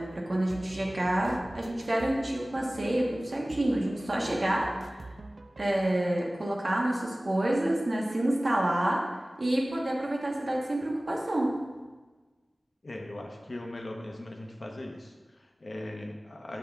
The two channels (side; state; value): both; normal; correlation 0.98